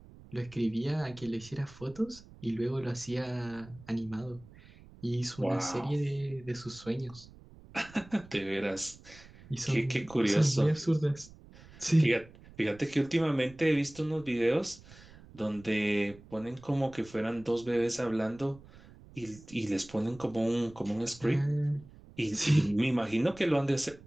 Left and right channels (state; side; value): noise; right; rumble, 21 dB below the sound